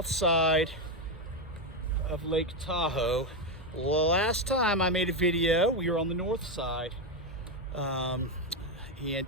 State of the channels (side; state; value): both; normal; correlation 0.08